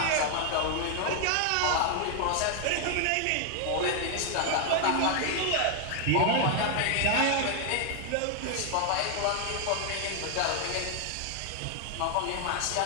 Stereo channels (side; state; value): both; different; correlation 0.00